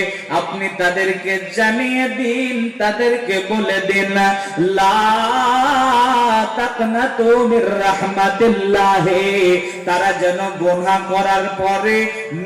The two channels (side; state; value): both; identical; correlation 1.00